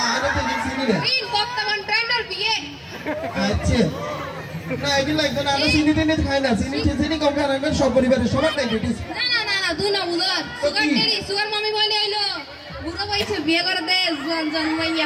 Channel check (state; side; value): identical; both; correlation 1.00